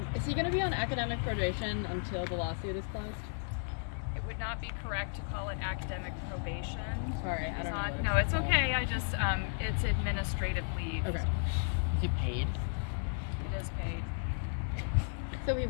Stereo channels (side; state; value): right; silent; 55 dB below the other